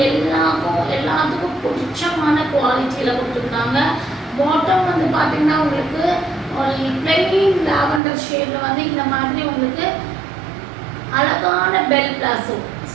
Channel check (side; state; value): left; drops out; at 8.0 s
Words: எல்லாத்துக்கும் பிடிச்சமான குவாலிட்டியில் கொடுத்துருக்காங்க. பாட்டம் வந்து பார்த்தீங்கன்னா உங்களுக்கு பிளெயின் லாவெண்டர் ஷேடில் வந்து இந்த மாதிரி உங்களுக்கு அழகான பெல் பிளாசோ.